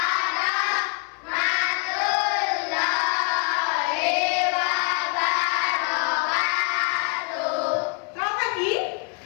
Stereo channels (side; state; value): right; quieter; 34.5 dB